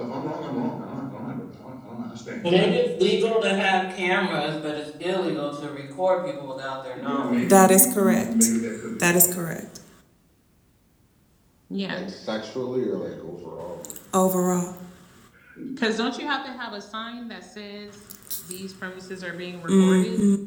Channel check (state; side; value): identical; both; correlation 1.00